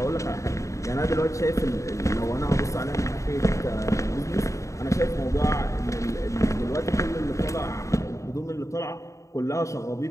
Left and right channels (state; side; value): late; right; 0.15 ms